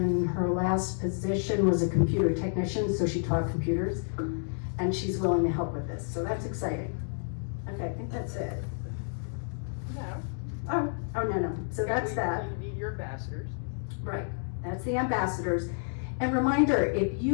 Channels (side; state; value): right; silent; digital silence